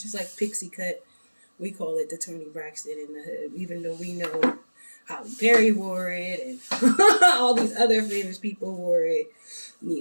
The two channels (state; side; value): inverted; both; correlation -1.00